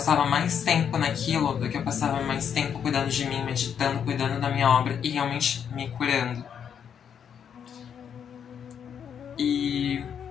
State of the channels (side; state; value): right; quieter; 8.0 dB